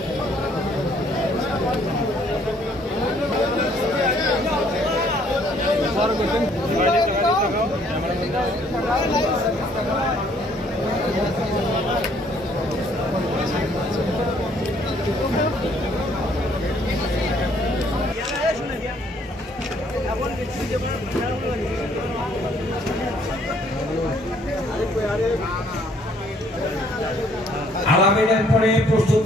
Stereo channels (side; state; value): both; normal; correlation 0.63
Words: আলামিনের পরে প্রস্তুত